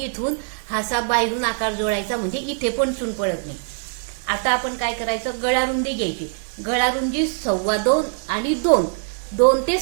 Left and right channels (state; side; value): silent; left; digital silence